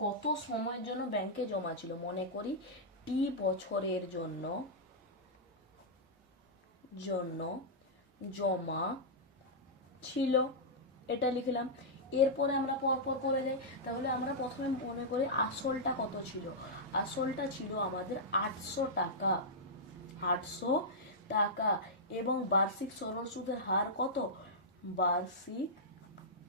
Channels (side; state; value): both; normal; correlation -0.11